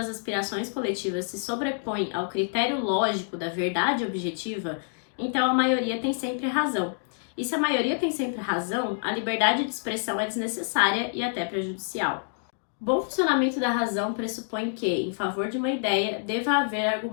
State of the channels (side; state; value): right; silent; digital silence